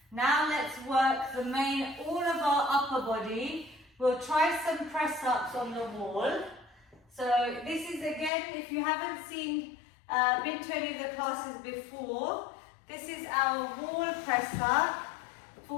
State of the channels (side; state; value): right; drops out; at 8.3 s